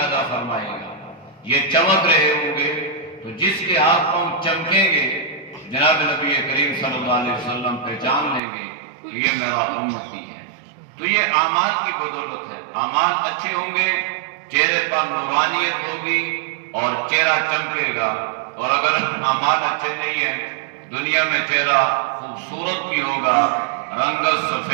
فرمائے گا، یہ چمک رہے ہوں گے۔ تو جس کے ہاتھ پاؤں چمکیں گے جناب نبی کریم صلی اللہ علیہ وسلم پہچان لیں گے کہ یہ میرا امتی ہے۔ تو یہ اعمال کی بدولت ہے، اعمال اچھے ہوں گے، چہرے پر نورانیت ہوگی اور چہرہ چمکے گا، اور اگر اعمال اچھے نہیں ہیں، دنیا میں چہرہ خوبصورت بھی ہوگا، رنگت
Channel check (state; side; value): drops out; left; at 8.4 s